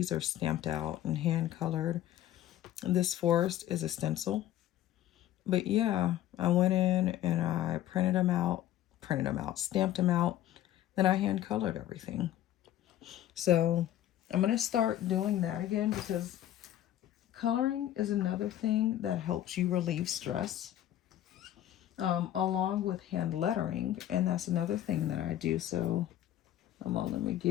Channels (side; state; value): right; quieter; 12.5 dB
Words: are stamped out and hand colored. This forest is a stencil. But yeah, I went in and I printed them out, stamped them out. Then I hand colored everything. So I'm going to start doing that again because coloring is another thing that helps you relieve stress. Along with hand lettering. And that's another thing that I do. So let me